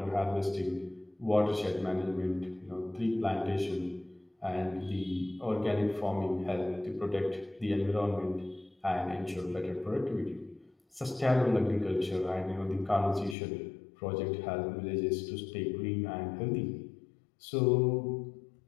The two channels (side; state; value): right; drops out; at 13.4 s